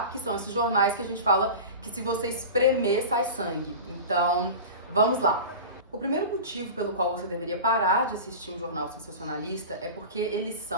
Que são esses jornais que a gente fala que se você espremer, sai sangue. Então, vamos lá. O primeiro motivo pelo qual você deveria parar de assistir um jornal sensacionalista é porque eles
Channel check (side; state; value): both; inverted; correlation -0.31